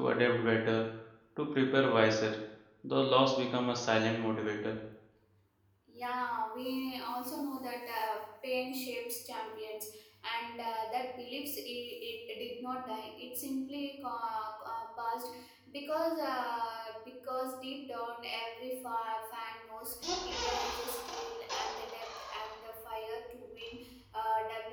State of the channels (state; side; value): identical; both; correlation 1.00